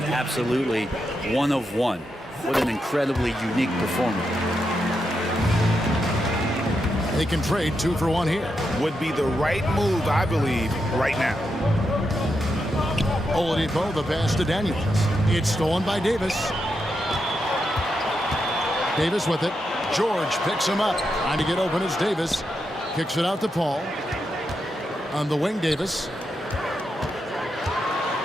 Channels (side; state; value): both; normal; correlation 0.85